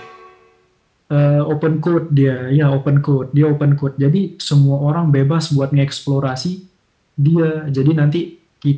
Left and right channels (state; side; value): identical; both; correlation 1.00